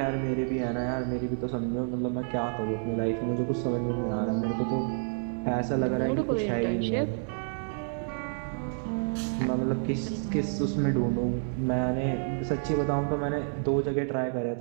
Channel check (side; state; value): left; silent; 58 dB below the other